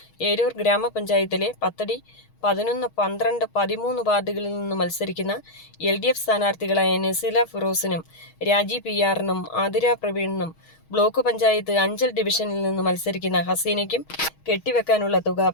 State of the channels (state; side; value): late; right; 6.3 ms